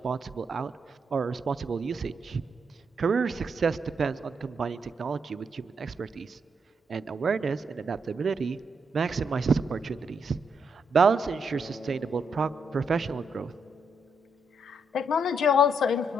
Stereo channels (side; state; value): both; normal; correlation 0.78